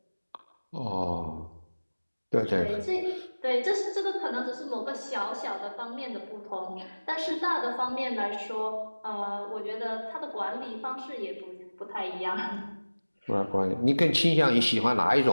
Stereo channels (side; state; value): both; inverted; correlation -1.00